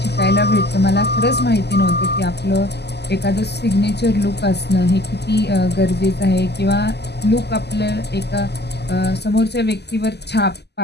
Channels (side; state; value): right; late; 0.49 ms